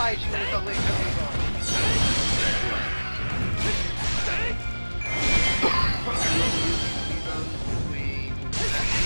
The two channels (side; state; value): both; inverted; correlation -1.00